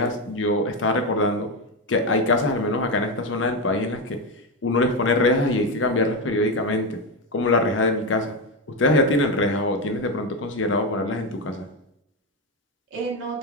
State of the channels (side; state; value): both; normal; correlation 0.11